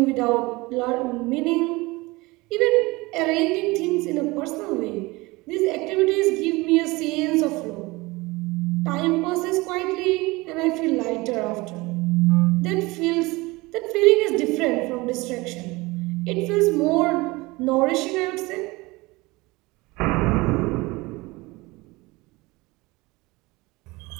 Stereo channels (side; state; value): left; quieter; 22.6 dB